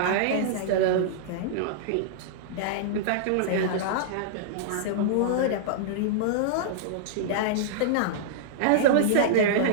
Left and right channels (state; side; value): different; both; correlation -0.02